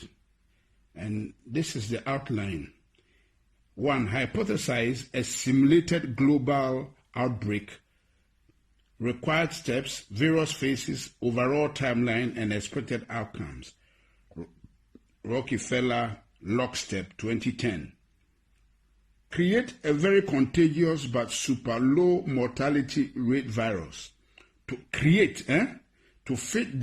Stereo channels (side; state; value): both; identical; correlation 1.00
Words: And this is the outline. 1. Hypothesize a simulated global outbreak. Required steps, various phases, overall timeline, and expected outcomes. Rockefeller Lockstep 2010. Create a very contagious but super low mortality rate virus. To fit